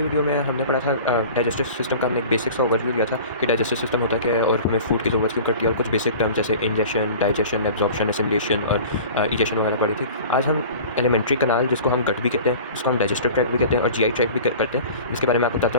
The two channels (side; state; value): both; inverted; correlation -0.41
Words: वीडियो में हमने पढ़ा था डाइजेस्टिव सिस्टम का। हमने एक बेसिक सा ओवरव्यू दिया था कि डाइजेस्टिव सिस्टम होता क्या है और हमें फूड की ज़रूरत क्यों पड़ती है, और कुछ बेसिक टर्म जैसे इंजेशन, डाइजेशन, एब्जॉर्प्शन, एसिमिलेशन और इजेशन वगैरह पढ़ी थी। आज हम एलिमेंट्री कनाल, जिसको हम गट भी कहते हैं, जिसको हम डाइजेस्टिव ट्रैक्ट भी कहते हैं और जीआई ट्रैक्ट भी करते हैं, इसके बारे में आपको बताता